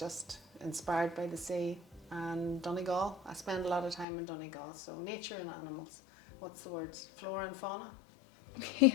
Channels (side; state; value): right; drops out; at 4.0 s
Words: inspired by the sea and Donegal. I spend a lot of time in Donegal, so nature and animals. What's the words? Flora and fauna.